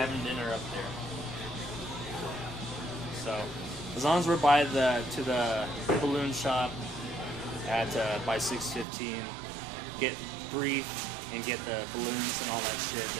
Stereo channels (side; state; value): left; drops out; at 8.8 s